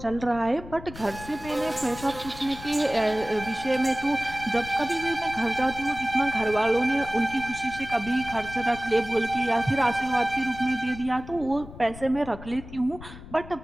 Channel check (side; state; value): left; noise; rumble, 15 dB below the sound